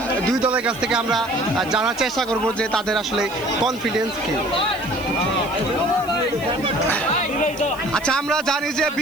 দুই দলের কাছ থেকে আমরা জানার চেষ্টা করব যে তাদের আসলে কনফিডেন্স কি। আচ্ছা, আমরা জানি যে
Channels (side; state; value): left; noise; hiss, 19 dB below the sound